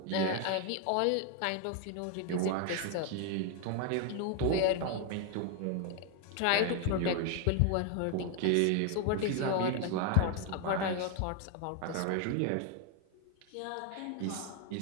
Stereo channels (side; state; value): both; different; correlation 0.01